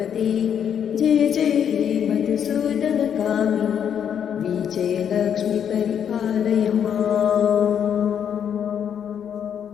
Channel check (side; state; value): right; quieter; 8.5 dB